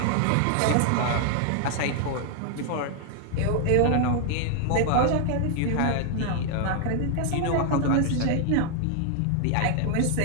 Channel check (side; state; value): both; different; correlation 0.00